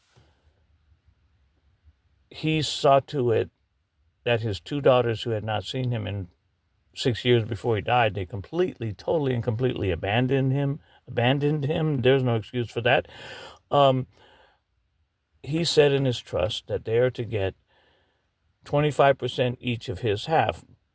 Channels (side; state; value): both; identical; correlation 1.00